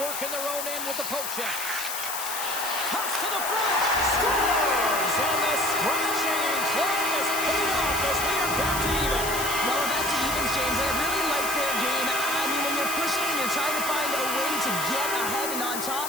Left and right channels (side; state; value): left; noise; hiss, 5 dB below the sound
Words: work in their own end with the poke check. Toss to the front. Scores! And the scratching and clawing is paid off as we are back to even. Well, we're back to evens, James. I really like their game. I mean, when you're pushing and you're trying to find a way to get ahead and on